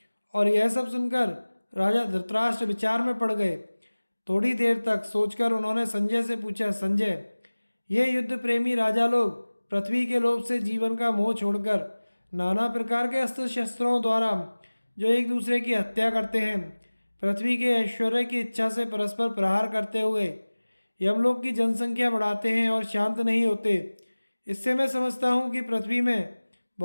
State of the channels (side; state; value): both; inverted; correlation -1.00